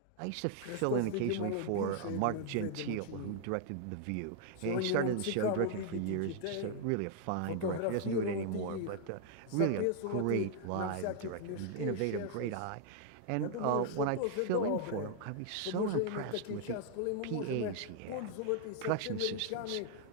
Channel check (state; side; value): different; both; correlation 0.00